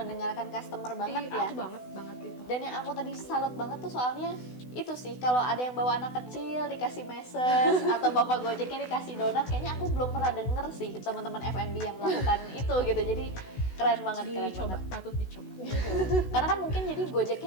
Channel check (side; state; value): right; late; 16 ms